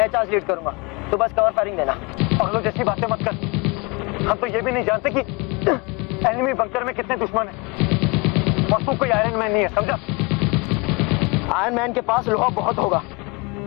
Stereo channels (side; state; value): right; quieter; 27.8 dB